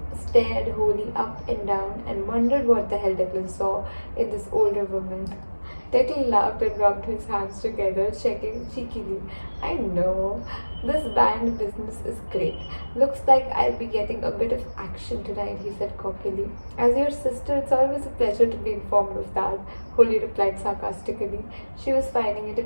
stared Holly up and down and wondered what the hell Declan saw in this older woman. Declan laughed and rubbed his hands together, checking cheekily. I know. This band business is great. Looks like I'll be getting a bit of action tonight, he said cockily. As your sister, it's always a pleasure to be informed of that, Holly replied sarcastically. She was finding it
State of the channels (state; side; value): inverted; both; correlation -1.00